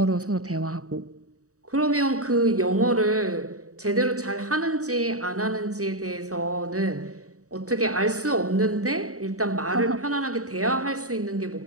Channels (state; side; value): late; left; 0.66 ms